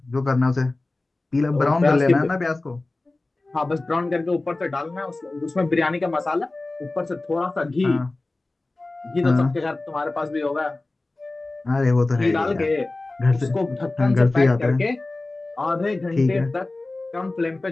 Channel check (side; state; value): right; quieter; 3.1 dB